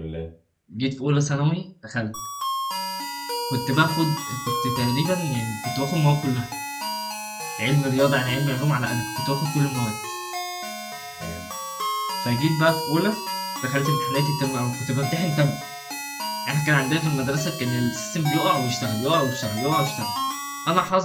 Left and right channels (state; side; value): identical; both; correlation 1.00